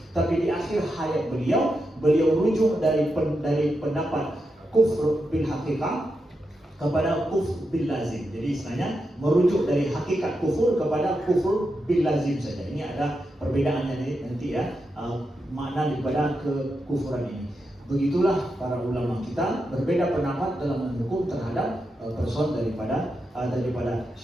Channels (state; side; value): normal; both; correlation 0.86